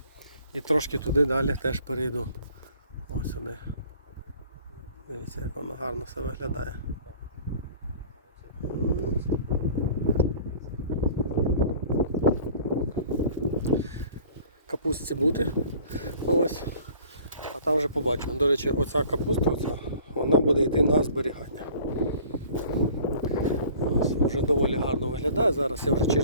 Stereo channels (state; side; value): inverted; both; correlation -0.49